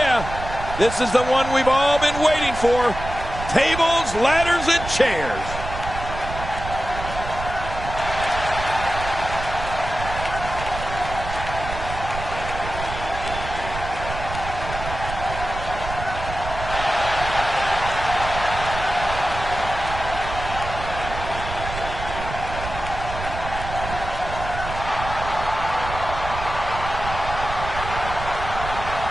This is the one we've all been waiting for. Tables, ladders, and chairs.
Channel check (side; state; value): right; noise; rumble, 8 dB below the sound